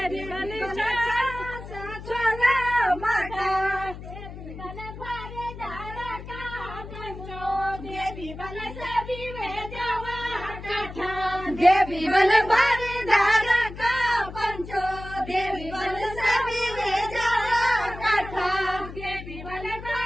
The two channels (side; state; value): left; noise; hum, 12 dB below the sound